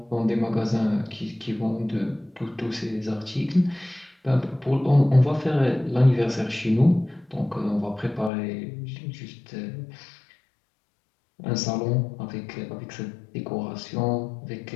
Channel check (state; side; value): drops out; right; at 8.3 s